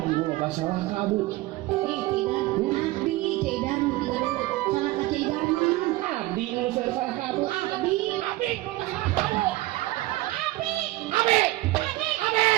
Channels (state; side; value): quieter; left; 18.6 dB